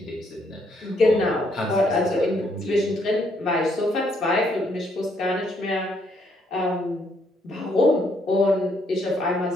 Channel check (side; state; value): both; normal; correlation 0.71